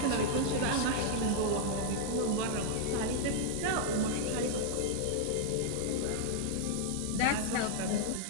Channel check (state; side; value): different; both; correlation -0.01